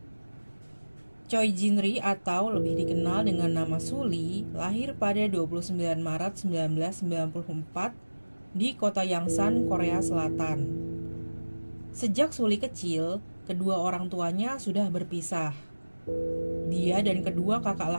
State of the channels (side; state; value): both; inverted; correlation -1.00